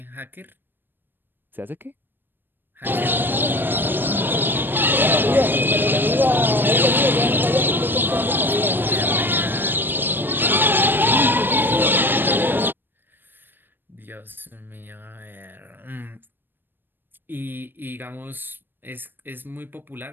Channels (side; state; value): left; late; 0.095 ms